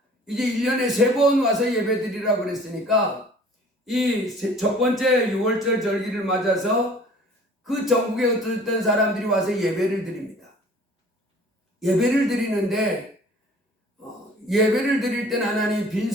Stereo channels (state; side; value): normal; both; correlation 0.49